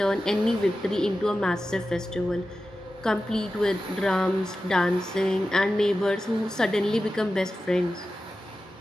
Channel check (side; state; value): both; normal; correlation 0.93